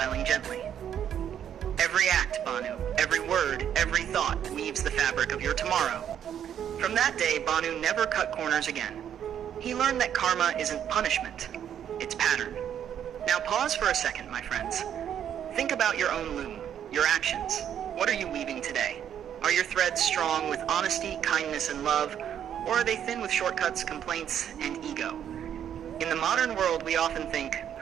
gently. "Every act, Bhanu, every word, every thought weaves the fabric of your tomorrow." From that day, Bhanu never cut corners again. He learned that karma isn't punishment, it's pattern. Now pause for a second, my friends. Think about your own loom, your actions. What are you weaving today? Are your threads strong with honesty, kindness, and love, or are they thin with shortcuts, complaints, and ego? In the modern world, we often think,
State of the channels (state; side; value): quieter; left; 9.5 dB